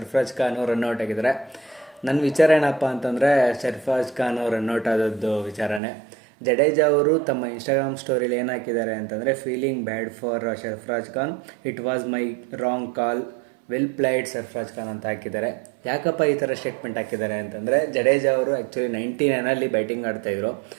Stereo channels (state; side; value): drops out; left; at 5.8 s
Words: ಖಾನ್ ರನ್ಔಟ್ ಆಗಿದ್ದಾರೆ. ನನ್ನ ವಿಚಾರ ಏನಪ್ಪ ಅಂತಂದರೆ, ಸರ್ಫರಾಜ್ ಖಾನ್ ರನ್ಔಟ್ ಆದದ್ದು ವಿಚಾರನೇ. ಜಡೇಜಾ ಅವರು ತಮ್ಮ ಇನ್ಸ್ಟಾಗ್ರಾಮ್ ಸ್ಟೋರಿಲಿ ಏನು ಹಾಕಿದ್ದಾರೆ ಅಂತಂದರೆ, feeling bad for Sarfaraz Khan, it was my wrong call, well played Sarfaraz Khan ಅಂತ ಹಾಕಿದ್ದಾರೆ. ಯಾಕಪ್ಪ ಈ ಥರ ಸ್ಟೇಟ್ಮೆಂಟ್ ಹಾಕಿದ್ದಾರೆ ಅಂತಂದರೆ, ಜಡೇಜಾ ಅವರು ಆ್ಯಕ್ಚುಲಿ 99 ಬ್ಯಾಟಿಂಗ್ ಆಡ್ತಾಯಿದ್ರು.